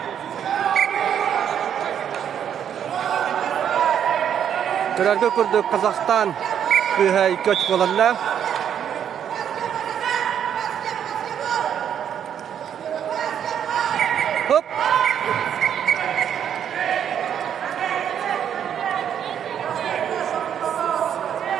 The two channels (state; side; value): quieter; left; 9.0 dB